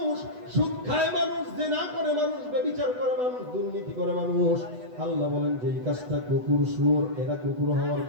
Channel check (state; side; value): late; left; 8.1 ms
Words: সুদ খায় মানুষ, জিনা করে মানুষ, ব্যভিচার করে মানুষ, দুর্নীতি করে মানুষ। আল্লাহ বলেন যে এই কাজটা কুকুর শুয়োর এরা কুকুর হওয়ার